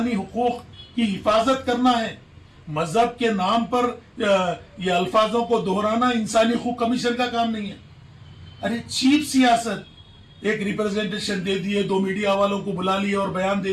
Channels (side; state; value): both; identical; correlation 1.00